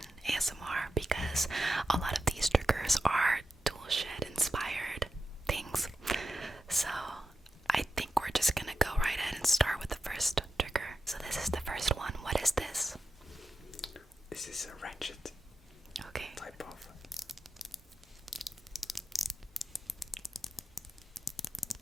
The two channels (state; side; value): normal; both; correlation 0.91